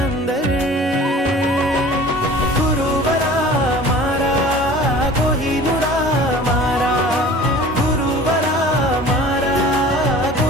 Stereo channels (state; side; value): normal; both; correlation 0.43